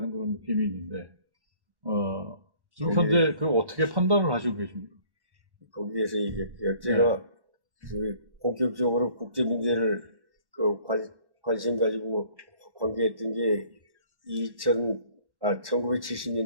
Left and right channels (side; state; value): left; late; 1.1 ms